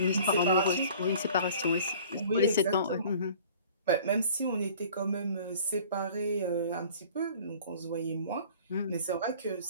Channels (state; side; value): inverted; both; correlation -0.48